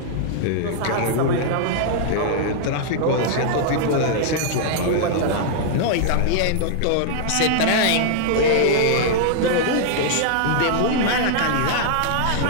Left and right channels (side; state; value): both; different; correlation -0.01